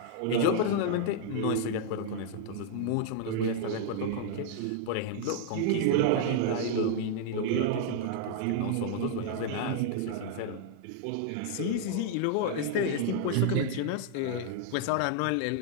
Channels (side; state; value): both; different; correlation 0.00